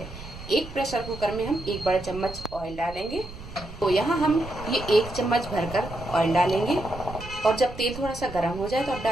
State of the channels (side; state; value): right; noise; rumble, 14 dB below the sound